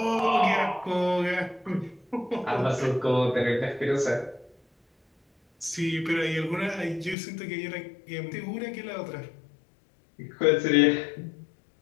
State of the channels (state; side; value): drops out; right; at 7.2 s